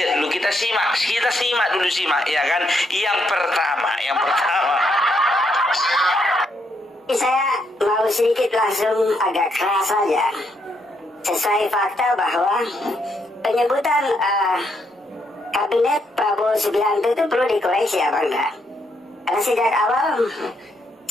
simak dulu ya kan. Yang pertama. Saya mau sedikit langsung agak keras saja. Sesuai fakta bahwa penyebutan kabinet Prabowo Subianto itu perlu dikoreksi ya Bang. Karena sejak awal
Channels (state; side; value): normal; both; correlation 0.76